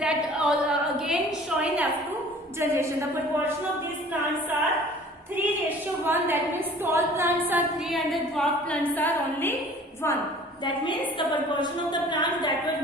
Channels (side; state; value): both; normal; correlation 0.48